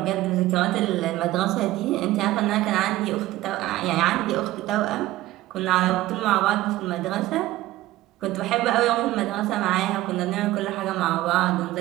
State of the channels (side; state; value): left; quieter; 16.2 dB